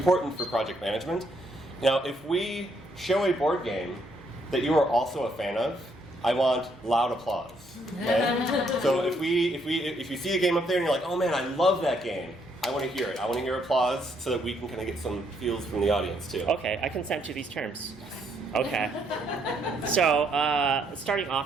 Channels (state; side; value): normal; both; correlation 0.72